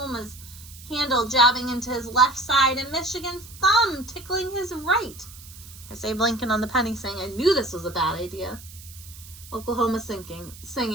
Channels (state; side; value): noise; right; hiss, 18 dB below the sound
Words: handle jabbing into his left side and Michigan's thumb tickling his right. Here's Abe Lincoln on the penny saying, I knew this was a bad idea. Oklahoma